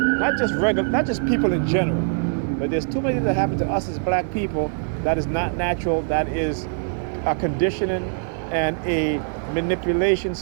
not just people in general, but there's too many things that happen to us as black people that is not natural, that is a conditioning and a manipulation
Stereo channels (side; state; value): left; silent; digital silence